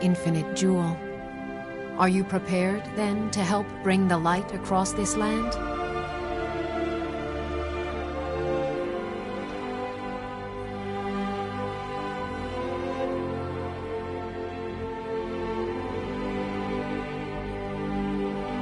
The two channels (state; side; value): identical; both; correlation 1.00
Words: infinite jewel. Are you prepared, then, to help bring the light across this land?